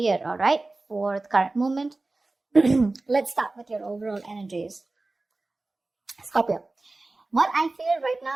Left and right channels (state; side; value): quieter; left; 3.2 dB